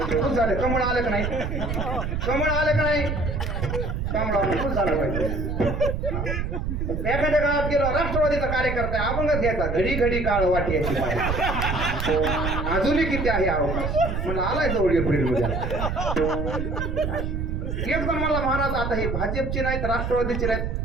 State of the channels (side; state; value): right; noise; rumble, 2 dB below the sound